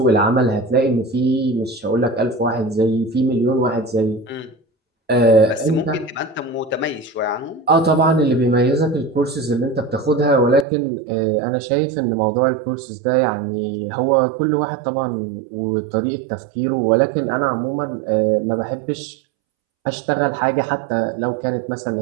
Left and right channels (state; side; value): drops out; left; at 10.7 s